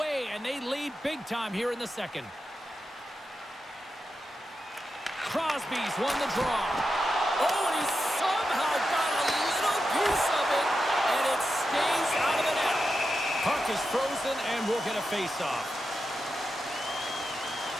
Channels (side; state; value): both; normal; correlation 0.89